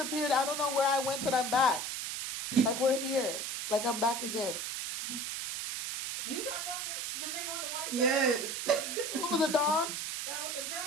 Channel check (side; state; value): right; noise; hiss, 4 dB below the sound